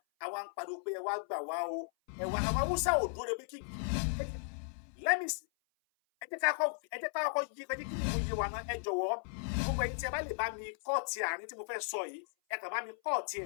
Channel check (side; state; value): right; silent; 54 dB below the other